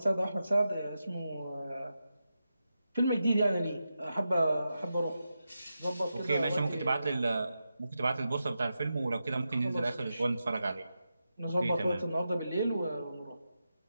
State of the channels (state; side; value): inverted; both; correlation -0.89